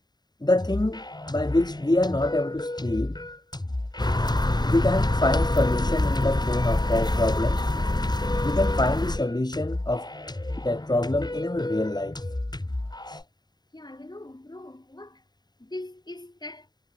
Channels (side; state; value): right; late; 0.20 ms